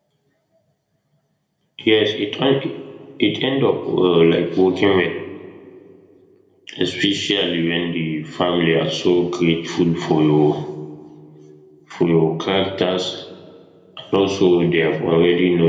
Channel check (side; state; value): both; identical; correlation 1.00